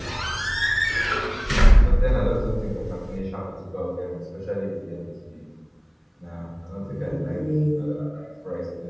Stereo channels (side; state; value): both; identical; correlation 1.00